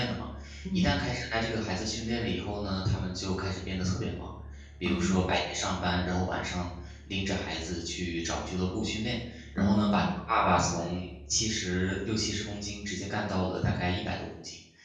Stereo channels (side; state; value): both; identical; correlation 1.00